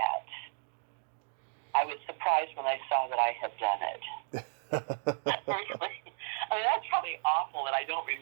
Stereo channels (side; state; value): left; silent; digital silence